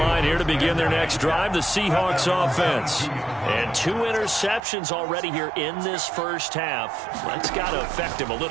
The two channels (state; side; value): drops out; left; at 4.6 s